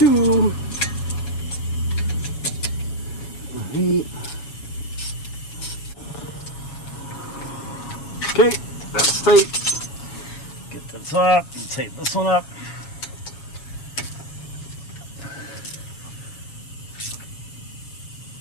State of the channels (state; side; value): late; right; 7.2 ms